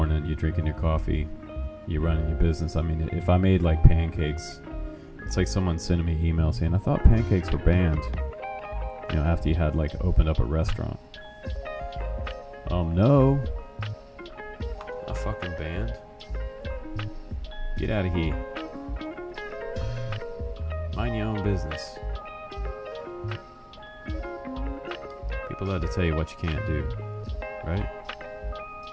You're drinking your coffee, you're running your business. I mean, if I made like pancakes, it's like someone sending me an email saying, I thought pancakes were banned. You know, after you had like opened up a restaurant. No. A fucking band. Get out of here. Mind your own business. People love to tell you what you can't do, right?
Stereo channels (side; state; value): both; identical; correlation 1.00